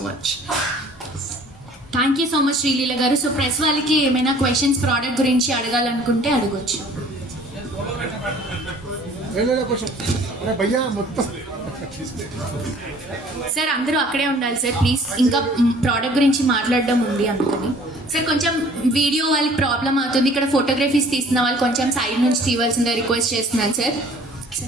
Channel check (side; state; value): both; normal; correlation 0.52